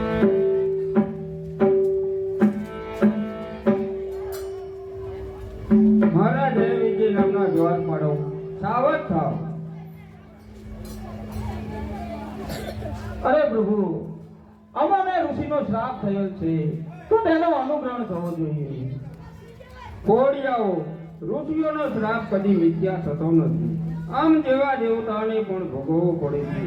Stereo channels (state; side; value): identical; both; correlation 1.00